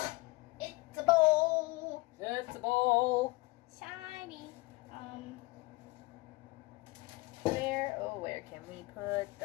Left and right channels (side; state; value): right; quieter; 23.2 dB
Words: It's a bowl. It's a bowl. Shiny. Where can we put